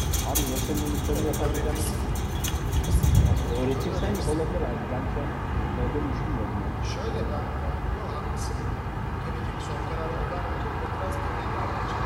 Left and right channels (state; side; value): identical; both; correlation 1.00